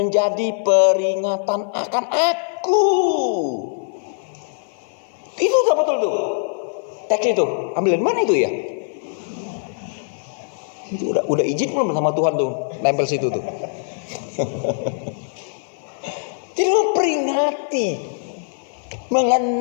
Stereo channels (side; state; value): right; silent; 56 dB below the other